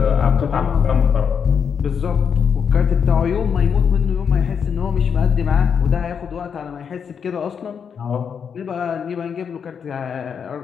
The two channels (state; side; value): quieter; right; 7.0 dB